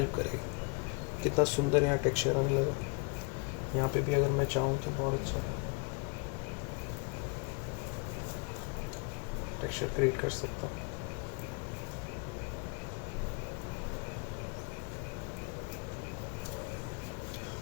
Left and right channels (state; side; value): quieter; right; 32.6 dB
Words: करेगा। कितना सुंदर यहाँ टेक्सचर आने लगा। यहाँ पे भी अगर मैं चाहूँ तो बहुत अच्छा टेक्सचर क्रिएट कर सकता हूँ।